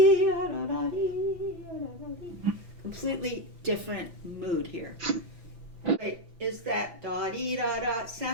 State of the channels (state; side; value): late; left; 5.9 ms